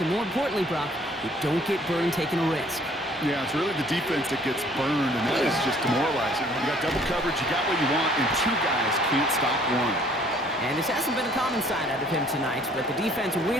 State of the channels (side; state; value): both; normal; correlation 0.58